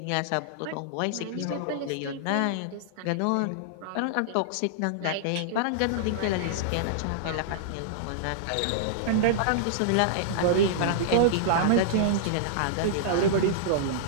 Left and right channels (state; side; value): different; both; correlation -0.02